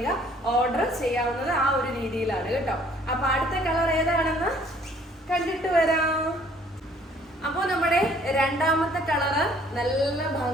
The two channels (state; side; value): normal; both; correlation 0.59